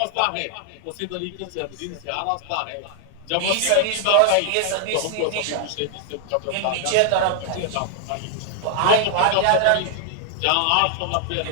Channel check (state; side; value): different; both; correlation 0.00